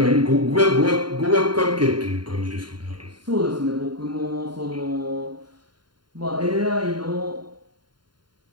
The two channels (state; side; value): late; left; 0.71 ms